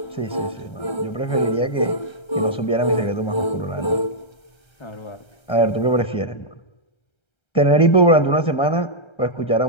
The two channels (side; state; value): right; late; 1.3 ms